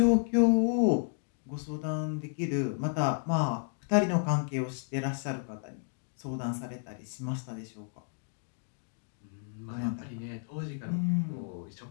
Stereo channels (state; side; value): silent; right; 57 dB below the other